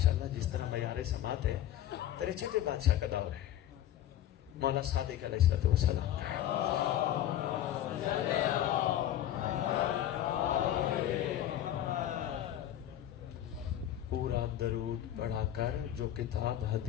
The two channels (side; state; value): right; quieter; 11.9 dB